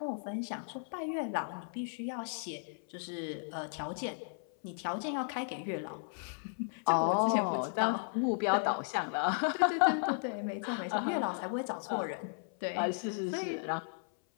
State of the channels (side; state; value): right; silent; 54 dB below the other